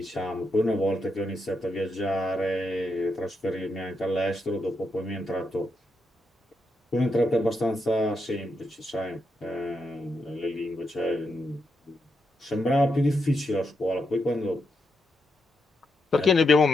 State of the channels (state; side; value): normal; both; correlation 0.83